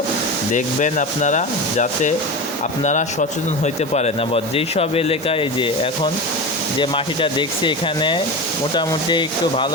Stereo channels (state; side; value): normal; both; correlation 0.25